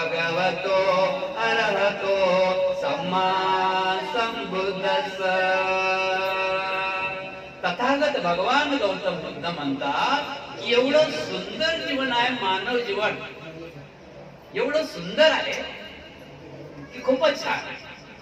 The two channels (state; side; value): identical; both; correlation 1.00